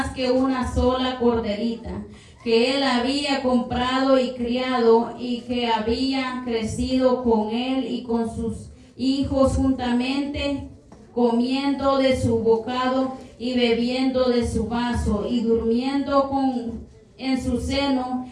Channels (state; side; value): identical; both; correlation 1.00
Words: que una sola corderita, que él había comprado y criado, y que había crecido con él y con sus hijos juntamente, comiendo de su bocado y bebiendo de su vaso, y durmiendo en su